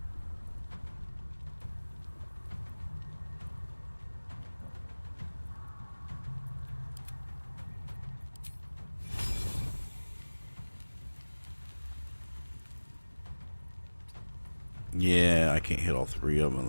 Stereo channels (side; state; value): both; inverted; correlation -1.00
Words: Yeah, I can't hit all three of